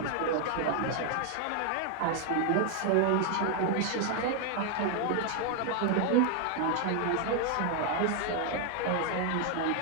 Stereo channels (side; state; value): both; different; correlation 0.00